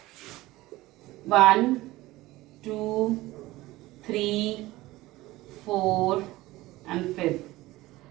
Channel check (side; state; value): left; quieter; 18.4 dB